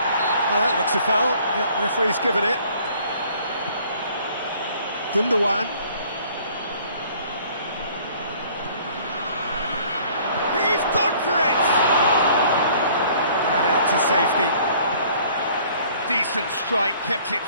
Well, that looks a foul. Yep, referee's given it. Gundogan. He's gone for it! And out to safety. Decent strike, kept it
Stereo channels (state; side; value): inverted; both; correlation -0.55